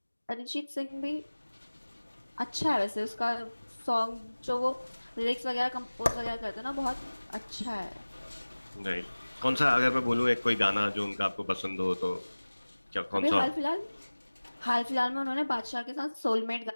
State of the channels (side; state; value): both; inverted; correlation -1.00